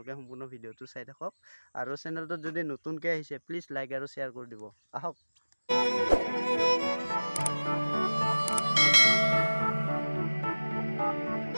সম্পূৰ্ণ ভিডিওটো চাই থাকক আৰু চেনেলটো যদি নতুনকৈ আহিছে প্লিজ লাইক আৰু শেয়াৰ কৰি দিব আহক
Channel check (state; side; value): inverted; both; correlation -1.00